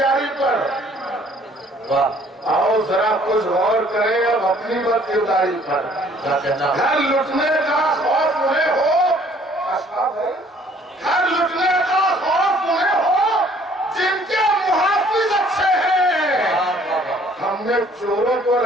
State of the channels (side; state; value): both; normal; correlation 0.58